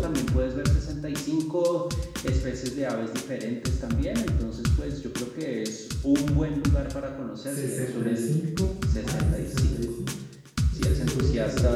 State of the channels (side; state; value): both; identical; correlation 1.00